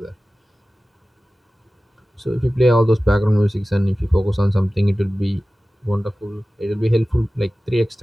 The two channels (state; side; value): normal; both; correlation 0.96